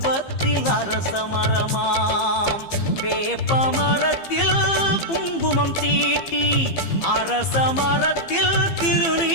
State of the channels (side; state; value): right; late; 15 ms